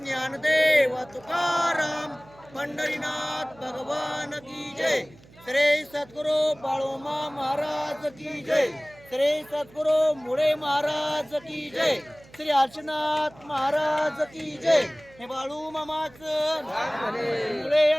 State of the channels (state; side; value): noise; right; hum, 24 dB below the sound